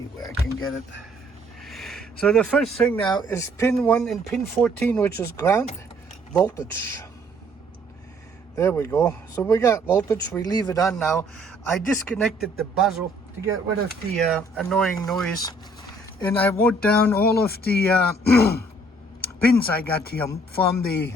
where I can get it. So the first thing now is pin 1 and pin 14, which is ground voltage. There we go. So we got voltage. We leave it on now. I disconnected the buzzer to get rid of the annoying noise, and I wrote down all of the pins I got here from the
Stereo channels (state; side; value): normal; both; correlation 0.62